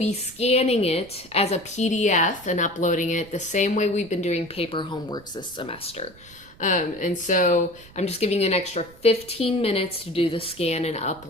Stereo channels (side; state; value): right; noise; rumble, 22 dB below the sound